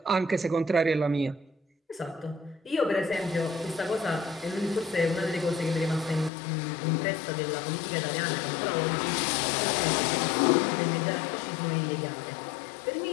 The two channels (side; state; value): right; drops out; at 6.3 s